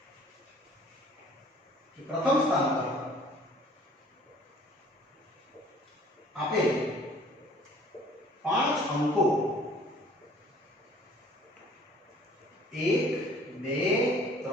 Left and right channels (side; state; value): both; normal; correlation 0.53